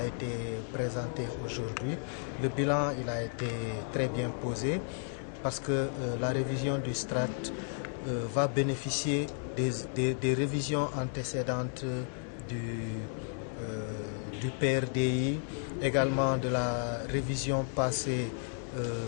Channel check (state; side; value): silent; right; 56 dB below the other